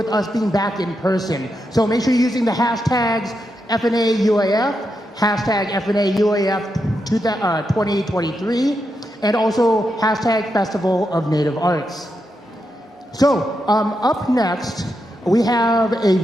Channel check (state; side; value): normal; both; correlation 0.85